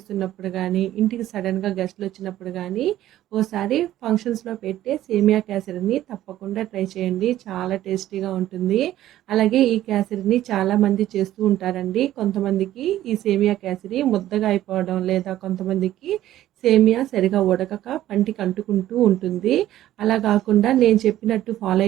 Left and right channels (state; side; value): quieter; left; 13.5 dB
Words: ఉన్నప్పుడు కానీ, ఇంటికి సడన్గా గెస్ట్లు వచ్చినప్పుడు కానీ, ఓసారి ఫంక్షన్స్లో పెట్టే సేమియా కేసరిని తప్పకుండా ట్రై చేయండి. చాలా టేస్టీగా ఉంటుంది. అలాగే ఈ కేసరిని చాలామంది చేస్తూ ఉంటారండి. కొంతమందికి ఈ సేమియా కేసరి ముద్దగా అయిపోవడం, లేదా కొంతమందికి సేమియా సరిగా ఉడకక పంటికి అంటుకుంటూ ఉంటుంది. అలా కాకుండా నేను చెప్పినట్టు ఫాలో